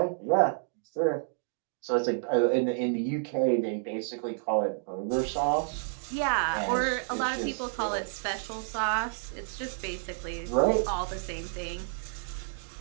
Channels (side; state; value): left; silent; digital silence